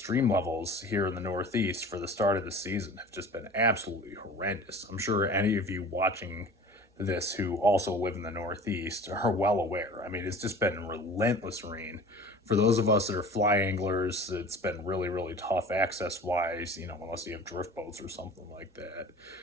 levels here in the Northeast for the start of the season have just been absolutely horrendous. I'm sure any of you watching this who also live in the Northeast are well aware. I mean, it's just been relentless rain. For those of us that are fly anglers, it's been really, really tough access wise, unless you have drift boats or something like that.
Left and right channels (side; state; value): both; normal; correlation 0.42